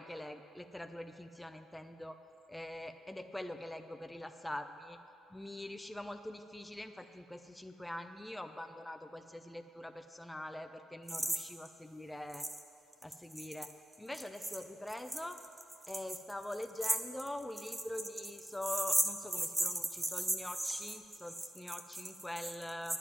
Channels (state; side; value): normal; both; correlation 0.95